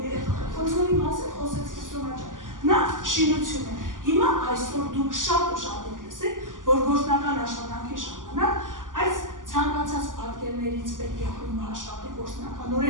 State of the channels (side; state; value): left; late; 0.88 ms